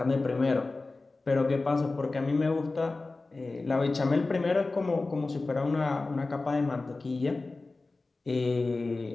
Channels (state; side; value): quieter; right; 3.4 dB